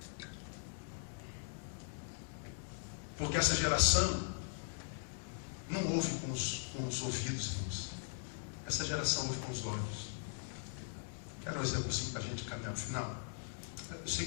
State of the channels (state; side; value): silent; right; 51 dB below the other